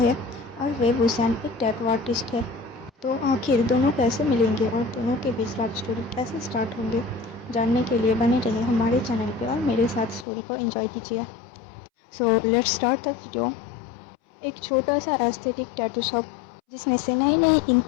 और वेब हुसैन एक टैटू आर्टिस्ट है। तो आखिर दोनों कैसे मिलेंगे और दोनों के बीच लव स्टोरी कैसे स्टार्ट होंगे, जानने के लिए बने रहे हमारे चैनल पे और मेरे साथ स्टोरी को एंजॉय कीजिए। So let's start the video. एक छोटा सा एस्थेटिक टैटू शॉप जिसमें से नई नई इंक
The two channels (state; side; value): drops out; right; at 10.2 s